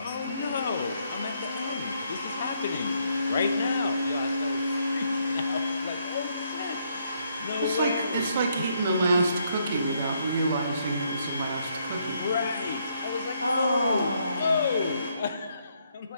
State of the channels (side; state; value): both; inverted; correlation -0.73